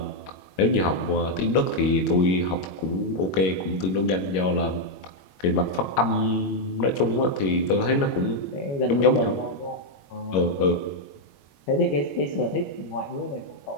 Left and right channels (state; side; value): late; right; 21 ms